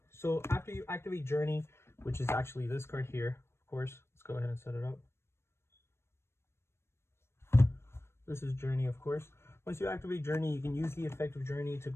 after you activate Journey, which is actually this card here, of course, let's go ahead and set it up. This is Journey, of course. Once you activate Journey, you can use the effect of Journey to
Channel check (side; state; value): right; late; 0.12 ms